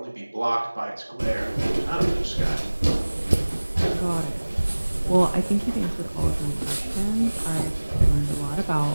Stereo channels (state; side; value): inverted; both; correlation -1.00